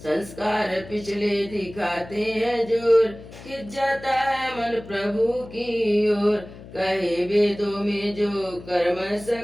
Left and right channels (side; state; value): left; noise; hum, 17 dB below the sound